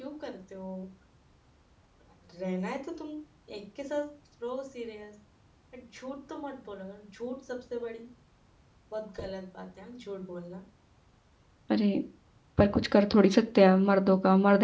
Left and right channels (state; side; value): identical; both; correlation 1.00